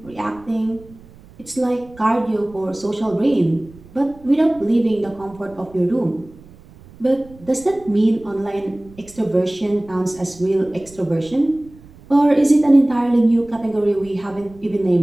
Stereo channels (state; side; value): noise; right; rumble, 23 dB below the sound